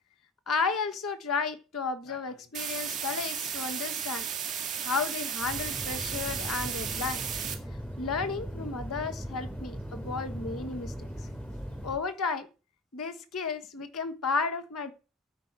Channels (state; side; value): normal; both; correlation 0.32